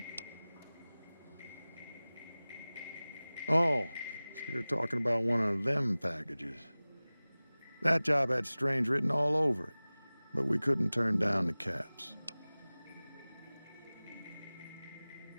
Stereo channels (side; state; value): both; inverted; correlation -0.99